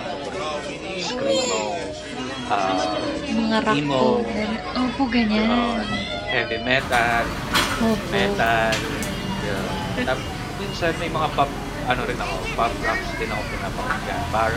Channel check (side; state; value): both; identical; correlation 1.00